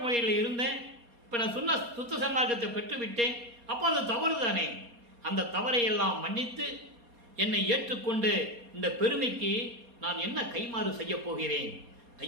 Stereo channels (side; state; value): left; late; 4.2 ms